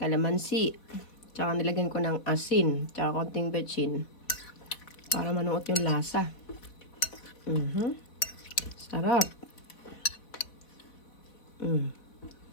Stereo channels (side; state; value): right; late; 3.8 ms